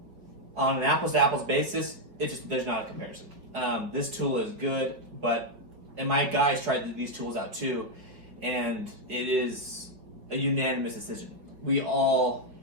on an apples-to-apples basis, there's not a comparison. This tool is good, and my guys tried these tools out too, and it is a unanimous decision. We all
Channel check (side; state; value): left; late; 4.6 ms